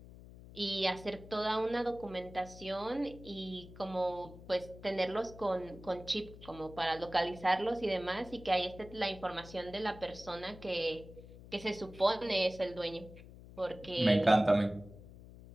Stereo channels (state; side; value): noise; left; hum, 17 dB below the sound